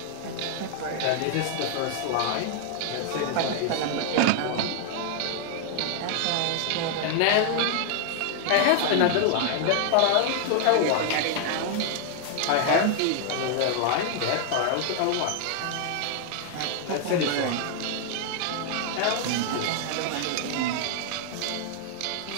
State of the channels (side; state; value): both; different; correlation 0.00